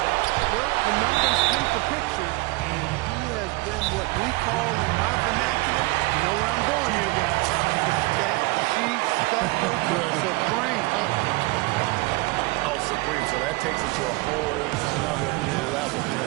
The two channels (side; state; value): left; quieter; 23.5 dB